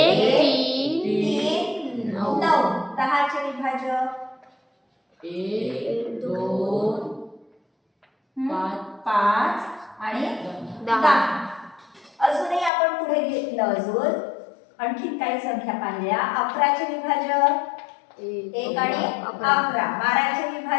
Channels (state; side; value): drops out; right; at 12.7 s